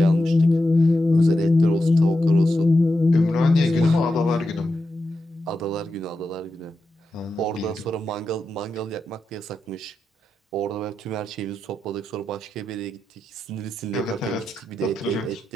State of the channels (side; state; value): both; normal; correlation 0.88